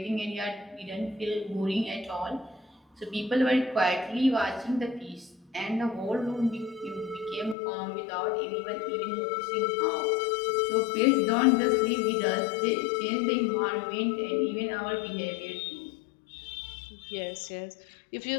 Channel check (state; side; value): drops out; right; at 7.6 s